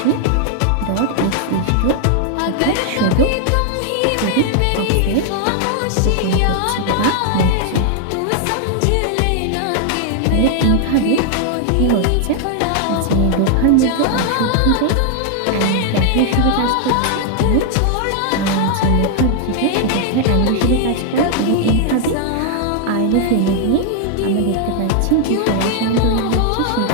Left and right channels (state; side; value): different; both; correlation 0.00